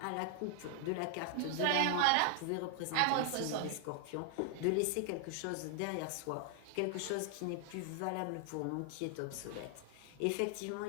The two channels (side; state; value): both; different; correlation 0.00